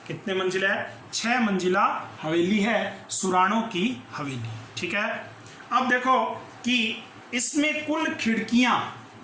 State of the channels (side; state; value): both; identical; correlation 1.00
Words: कितने मंजिला है? 6 मंजिला हवेली है सुराणों की हवेली। ठीक है, अब देखो कि इसमें कुल खिड़कियां